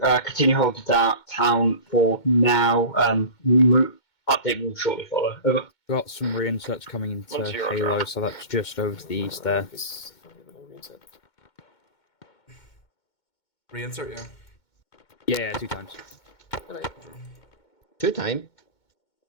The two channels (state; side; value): late; right; 2.2 ms